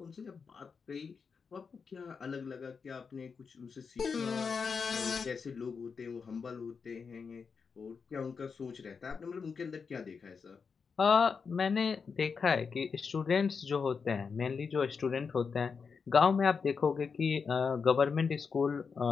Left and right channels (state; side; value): quieter; right; 5.6 dB